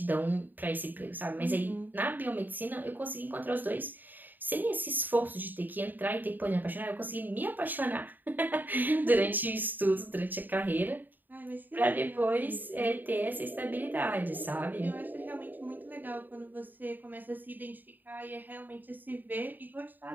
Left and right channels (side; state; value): left; late; 0.089 ms